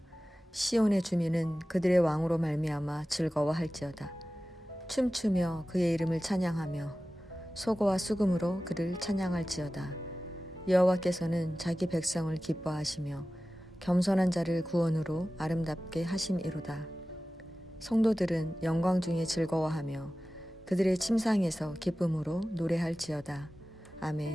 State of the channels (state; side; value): normal; both; correlation 0.96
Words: 시온의 주민은 그들의 왕으로 말미암아 즐거워할지어다. 춤추며 그의 이름을 찬양하며 소고와 수금으로 그를 찬양할지어다. 여호와께서는 자기 백성을 기뻐하시며 겸손한 자를 구원으로 아름답게 하심이로다. 성도들은 영광 중에 즐거워하며 그들의 침상에서 기쁨으로 노래할지어다.